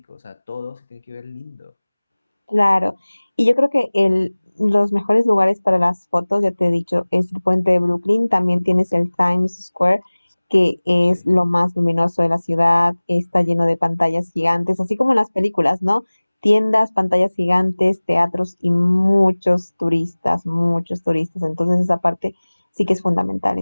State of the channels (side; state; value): both; inverted; correlation -1.00